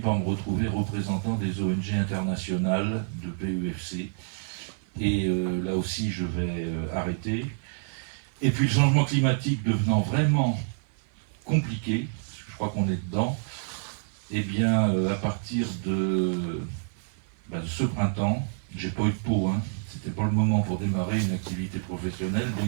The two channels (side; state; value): left; silent; 55 dB below the other